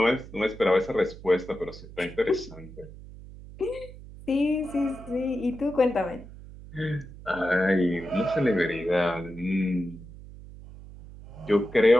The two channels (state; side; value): noise; right; hum, 16 dB below the sound